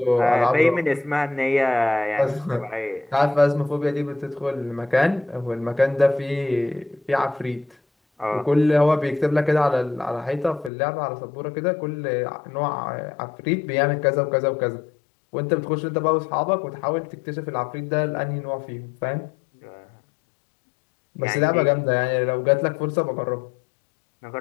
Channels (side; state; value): right; drops out; at 10.7 s